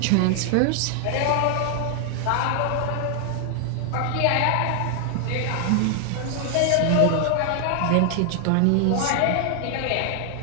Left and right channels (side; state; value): both; different; correlation 0.00